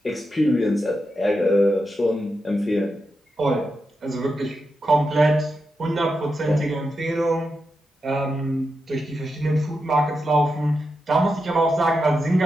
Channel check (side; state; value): both; normal; correlation 0.87